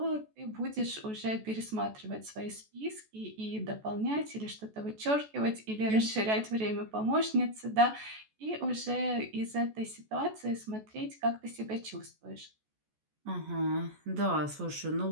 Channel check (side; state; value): left; late; 14 ms